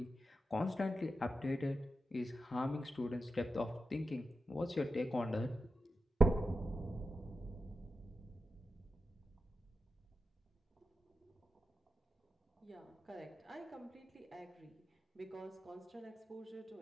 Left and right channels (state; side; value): normal; both; correlation 0.90